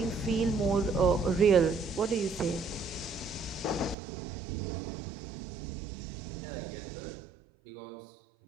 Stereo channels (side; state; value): left; drops out; at 4.0 s